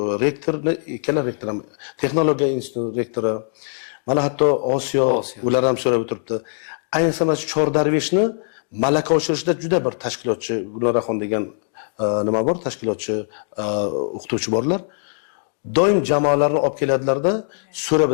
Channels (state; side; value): silent; right; digital silence